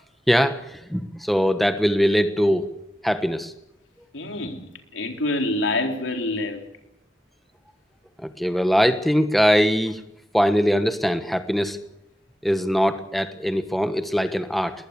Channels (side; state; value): both; normal; correlation 0.89